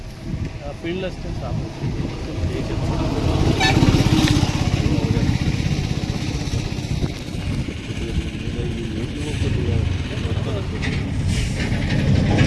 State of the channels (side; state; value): both; identical; correlation 1.00